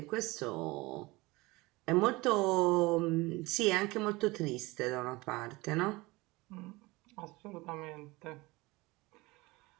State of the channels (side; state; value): left; quieter; 22.3 dB